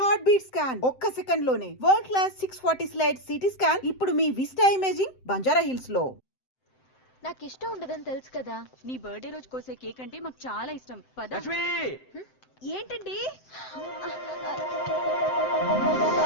Heart beat scan ఒక్క second లోనే world class 640 slide CT scan ఇప్పుడు మీ విస్టా ఇమేజింగ్ బంజారా హిల్స్ లో. నాకు ఇష్టం ఉండదని తెలుసు కదా. నీ బర్త్డే రోజు కోసే కేక్ అంటే మాకు చాలా ఇష్టం. పద. ఏంటండి?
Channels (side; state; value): right; late; 7.8 ms